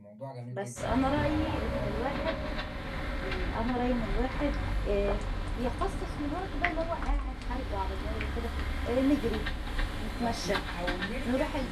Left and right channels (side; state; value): both; identical; correlation 1.00